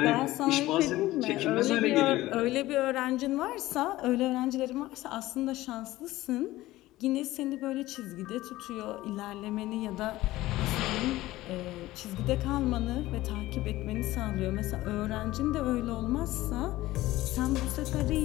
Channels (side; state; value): right; quieter; 17.0 dB